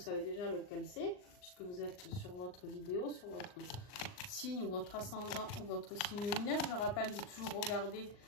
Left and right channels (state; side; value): late; right; 39 ms